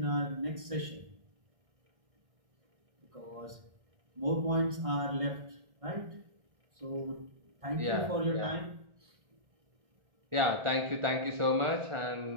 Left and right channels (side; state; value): left; late; 1.6 ms